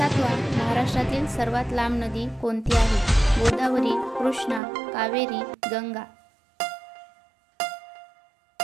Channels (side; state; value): left; drops out; at 4.6 s